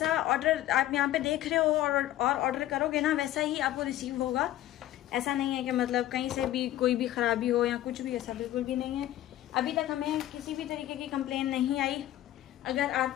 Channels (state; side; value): quieter; right; 13.7 dB